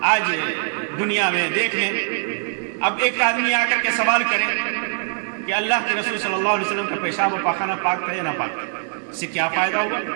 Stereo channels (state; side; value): silent; left; 64 dB below the other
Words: آج دنیا میں دیکھ لیں، اب ایک آدمی آ کر کے سوال کرے کہ اللہ کے رسول صلی اللہ علیہ وسلم کا پیشاب و پاخانہ پاک تھا یا نہ پاک، اس سے کیا فائدہ ہوگا؟